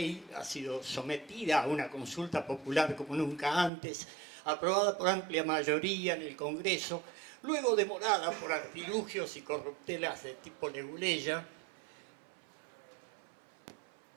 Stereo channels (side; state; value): left; drops out; at 3.7 s